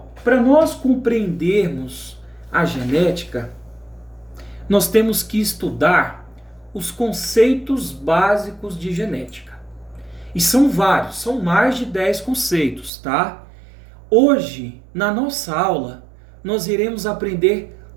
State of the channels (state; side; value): drops out; left; at 12.9 s